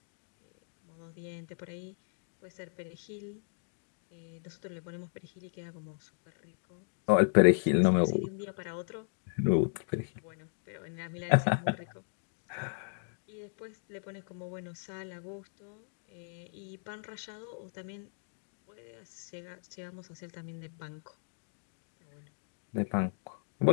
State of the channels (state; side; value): silent; right; digital silence